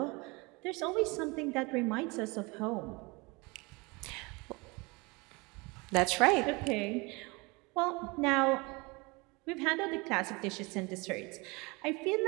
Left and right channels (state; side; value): quieter; left; 26.5 dB